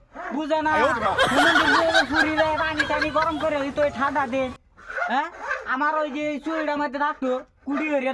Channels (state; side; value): identical; both; correlation 1.00